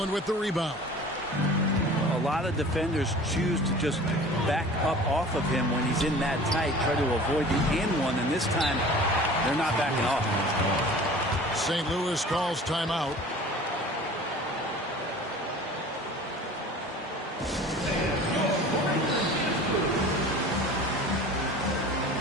with the rebound. A lot of defenders choose to just back up off of him when he's in that tight, try to avoid the and one, and this time they're not backing off. St. Louis calls timeout.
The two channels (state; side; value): normal; both; correlation 0.43